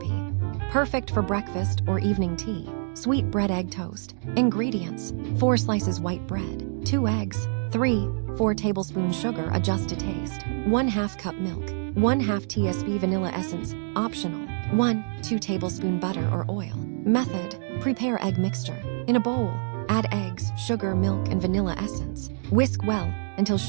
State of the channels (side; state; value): left; silent; digital silence